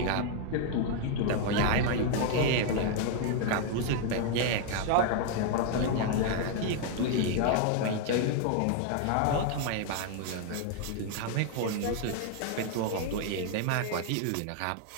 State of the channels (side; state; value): both; different; correlation 0.00